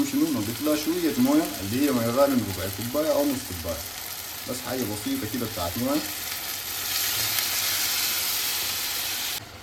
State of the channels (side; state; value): both; identical; correlation 1.00